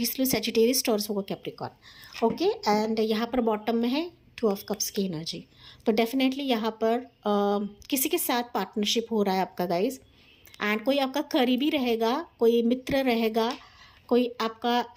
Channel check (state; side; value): identical; both; correlation 1.00